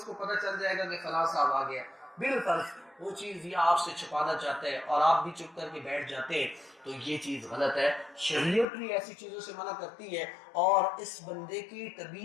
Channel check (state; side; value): drops out; right; at 8.7 s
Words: کو پتہ چل جائے گا کہ فلاں صاحب آ گیا، بالفرض وہ چیز یہ آپ سے چھپانا چاہتا ہے اور آپ بھی چپ کر کے بیٹھ جاتے ہیں، تو یہ چیز غلط ہے۔ شریعت بھی ایسی چیزوں سے منع کرتی ہے، اور اس بندے کی